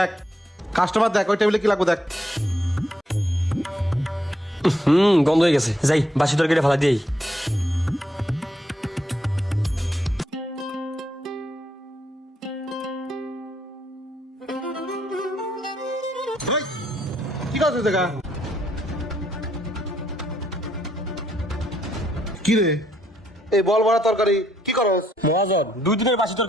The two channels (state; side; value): normal; both; correlation 0.75